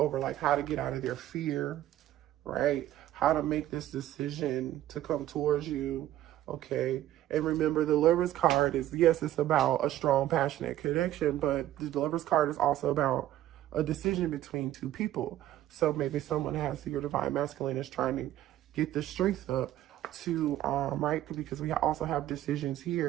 like how to get out of their fear, right? How to make this decision to come towards you, okay? And remember, the Lover's card is, yes, it's about a strong, passionate connection, but the Lover's card is also about a decision between two people. So maybe someone has, your divine masculine is trying to get the strength up to, right? Because we also have decisions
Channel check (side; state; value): left; quieter; 13.4 dB